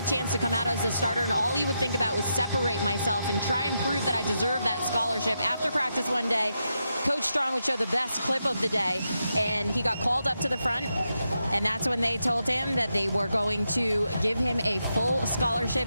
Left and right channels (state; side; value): inverted; both; correlation -0.85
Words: chance to come out as a starter, and all he would think about was separate myself and try and prove that I deserve that scholarship. After practice one day, Coach Strong would show the best clip of the day, and he got called up to the front, and that's when they told him that they were going to give him a full